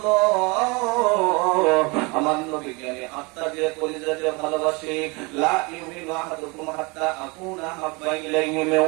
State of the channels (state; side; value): quieter; left; 28.1 dB